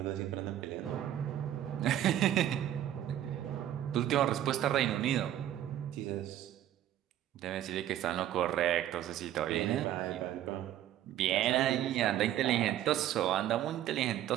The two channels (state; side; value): quieter; left; 11.9 dB